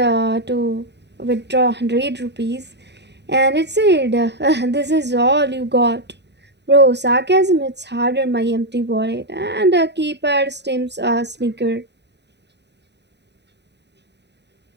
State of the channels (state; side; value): late; left; 0.50 ms